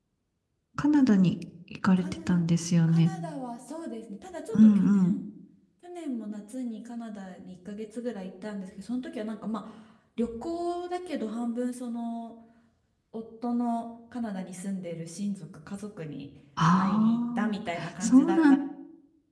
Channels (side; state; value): both; identical; correlation 1.00